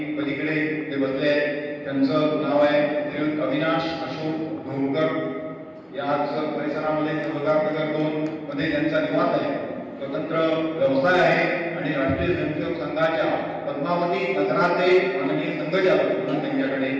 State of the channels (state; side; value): identical; both; correlation 1.00